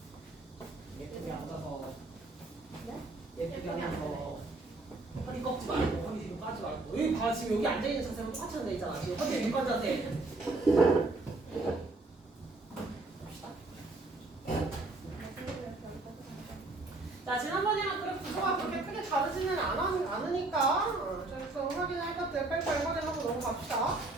예쁘게 앉아서. 네? 예쁘게 앉아서. 허리 꺾지 말고, 허리 뒤로 까지 말고. 여기 봐, 지금 여기 앉아있는 자세랑 똑같이 돼 있잖아. 지금 허리 윗관 자세. 갑시다. 자, 지난번이랑 그래프 구조가 그렇게 크게 다르지는 않으니까 좀 확인할 것들 빨리빨리 확인하고 넘어갑시다.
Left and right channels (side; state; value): left; quieter; 3.1 dB